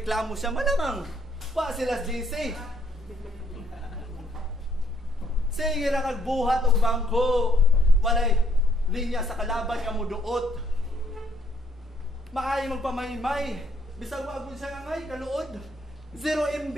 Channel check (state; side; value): normal; both; correlation 0.68